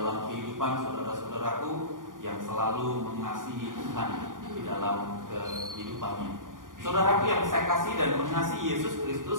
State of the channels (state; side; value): late; left; 0.89 ms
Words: kehidupan saudara-saudaraku yang selalu mengasihi Tuhan di dalam kehidupannya. Saudaraku yang saya kasih dan mengasihi Yesus